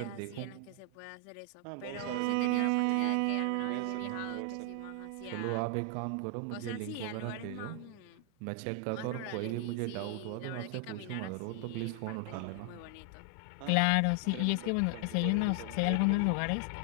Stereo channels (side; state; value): both; different; correlation 0.00